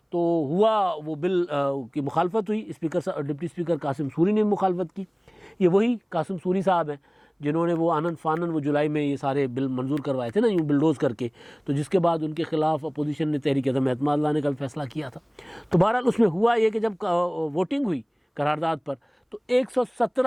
तो हुआ वो बिल की मुखालफत हुई। डिप्टी स्पीकर कासिम सूरी ने मुखालफत की। ये वही कासिम सूरी साहब हैं जिन्होंने वो आनन फानन वो जुलाई में ये सारे बिल मंजूर करवाए थे ना, यूँ बिलडोज़ करके। तो जिसके बाद उनके ख़िलाफ़ अपोजिशन ने तहरीक अदम एतमाद लाने का भी फ़ैसला किया था। तो बहरहाल उसमें हुआ ये कि जब वोटिंग हुई करारदाद पर, तो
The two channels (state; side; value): identical; both; correlation 1.00